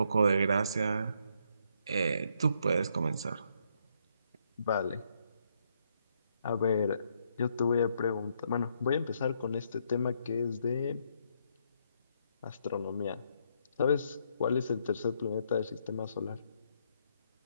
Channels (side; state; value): both; inverted; correlation -0.74